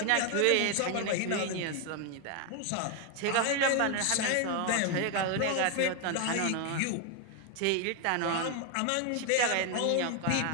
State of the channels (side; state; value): both; different; correlation 0.01